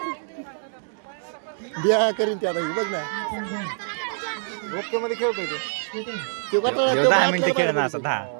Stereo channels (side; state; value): left; silent; digital silence